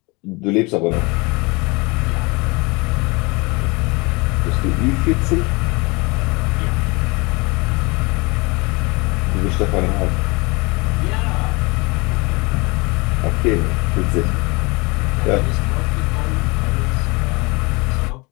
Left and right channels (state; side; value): quieter; right; 26.6 dB